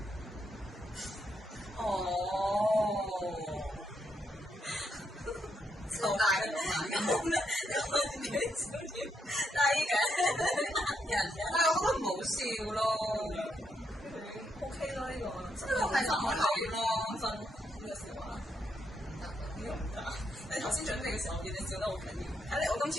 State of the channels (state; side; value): normal; both; correlation 0.79